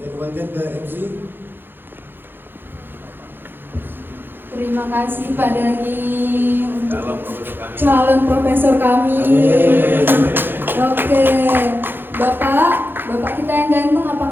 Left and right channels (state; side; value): late; left; 0.099 ms